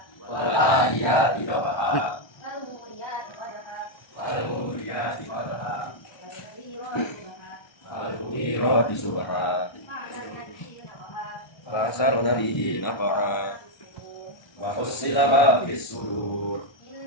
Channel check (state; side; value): late; right; 1.3 ms